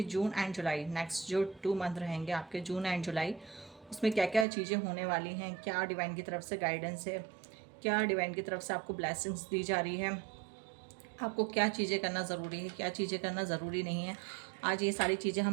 जून एंड जुलाई नेक्स्ट जो 2 मंथ रहेंगे आपके, जून एंड जुलाई, उसमें क्या क्या चीज़ें होने वाली हैं, क्या डिवाइन की तरफ से गाइडेंस है, क्या डिवाइन की तरफ से आपको ब्लेसिंग्स दी जा रही है, आपको क्या चीज़ें करना ज़रूरी है, क्या चीज़ें करना ज़रूरी नहीं है। आज ये सारी चीज़ें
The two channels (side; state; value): left; drops out; at 4.5 s